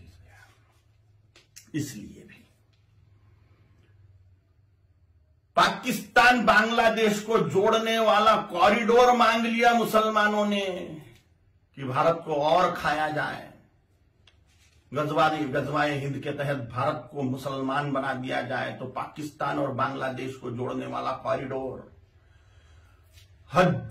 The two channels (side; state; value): both; identical; correlation 1.00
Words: इसलिए भी पाकिस्तान बांग्लादेश को जोड़ने वाला कॉरिडोर मांग लिया मुसलमानों ने कि भारत को और खाया जाए। गजवाए हिंद के तहत भारत को मुसलमान बना दिया जाए, तो पाकिस्तान और बांग्लादेश को जोड़ने वाला कॉरिडोर,